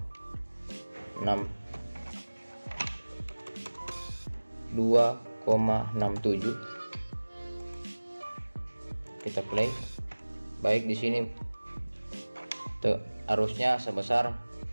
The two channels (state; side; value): inverted; both; correlation -1.00